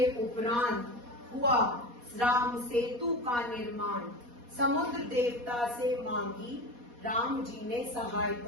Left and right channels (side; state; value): left; late; 4.2 ms